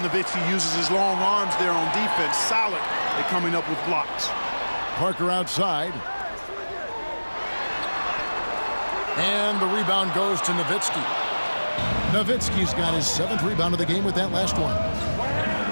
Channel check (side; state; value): both; inverted; correlation -1.00